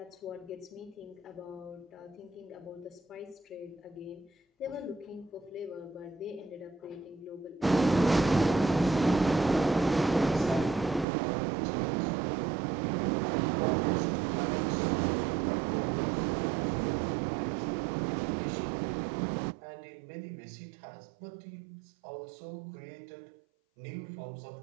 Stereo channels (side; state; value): left; drops out; at 11.1 s